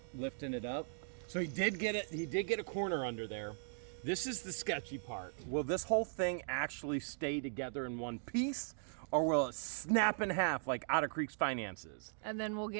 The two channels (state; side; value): silent; left; digital silence